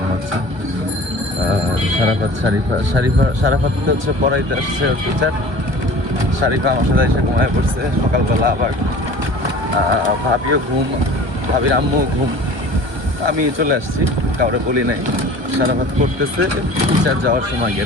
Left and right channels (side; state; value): left; late; 1.2 ms